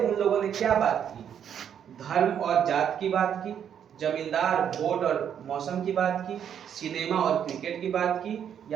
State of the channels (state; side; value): quieter; left; 8.8 dB